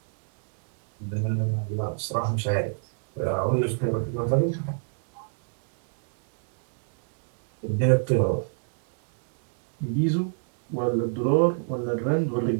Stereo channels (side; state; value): left; silent; digital silence